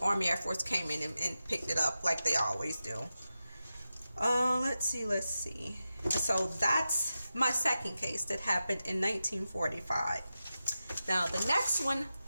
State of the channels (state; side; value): inverted; both; correlation -0.92